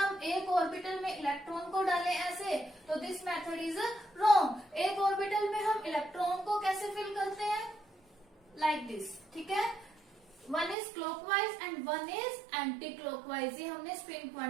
एक ऑर्बिटल में इलेक्ट्रॉन को डालें ऐसे, तो दिस मेथड इज रॉन्ग। एक ऑर्बिटल में हम इलेक्ट्रॉन को कैसे फिल करते हैं, लाइक दिस। ठीक है, one is clockwise and one is anti clockwise, ये हमने स्पिन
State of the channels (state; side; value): drops out; left; at 10.8 s